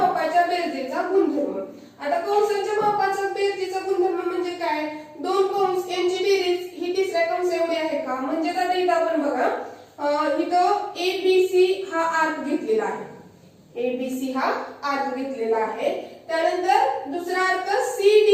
बेरजेचा गुणधर्म. आता कंसांच्या मापाचा बेरजेचा गुणधर्म म्हणजे काय, दोन कंस यांची बेरीज ही तिसऱ्या कंस एवढी आहे का. म्हणजे आता इथं आपण बघा इथं ABC हा आर्क घेतलेला आहे, ABC हा आर्क घेतलेला आहे. त्यानंतर दुसरा आर्क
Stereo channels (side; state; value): both; identical; correlation 1.00